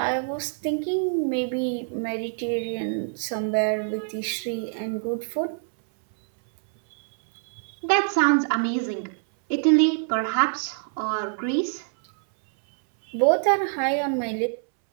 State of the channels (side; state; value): left; silent; 62 dB below the other